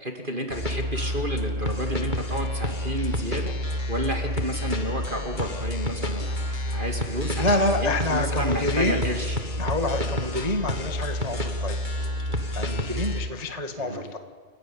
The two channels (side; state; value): left; late; 2.5 ms